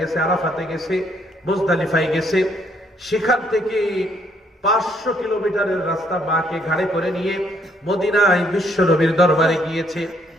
আরাফাতে গেছে, মুজদালিফায় গেছে। সেখান থেকে 500 কিলোমিটারের রাস্তা মাকে ঘাড়ে করে নিয়ে মদিনায় বিশ্বনবীর দরবারে গিয়েছে।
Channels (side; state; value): both; normal; correlation 0.69